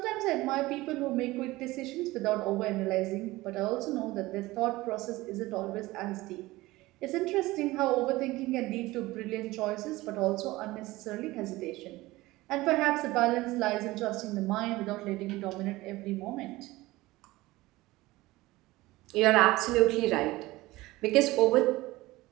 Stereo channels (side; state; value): left; quieter; 19.2 dB